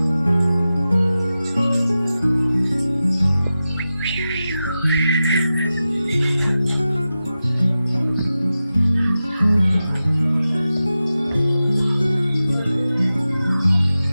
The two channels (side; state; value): both; inverted; correlation -0.93